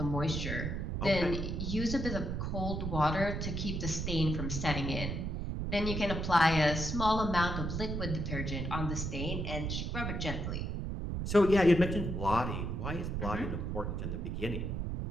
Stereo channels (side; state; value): right; noise; rumble, 2 dB below the sound